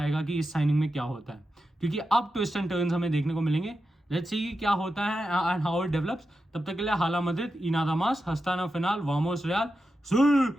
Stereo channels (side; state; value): both; normal; correlation 0.89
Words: कि इस साइनिंग में क्या होता है, क्योंकि अब ट्विस्ट एंड टर्न्स हमें देखने को मिलेंगे। लेट्स सी क्या होता है एंड हाउ इट डेवलप्स। तब तक के लिए हाला मद्रिद, इनादा मास, हस्ताना फिनाल, वामोस रियाल।